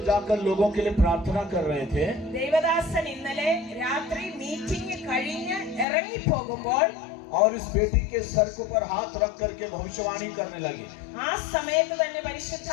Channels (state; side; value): drops out; right; at 5.9 s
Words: जाकर लोगों के लिए प्रार्थना कर रहे थे, ദേവദാസൻ ഇന്നലെ രാത്രി മീറ്റിംഗ് കഴിഞ്ഞ് ഇറങ്ങി പോകുമ്പോൾ और इस बेटी के सर के ऊपर हाथ रख करके भविष्यवाणी करने लगे। ആ സമയത്ത് തന്നെ